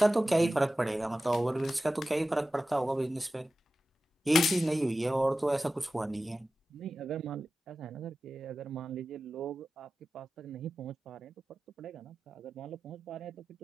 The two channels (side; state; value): both; normal; correlation 0.95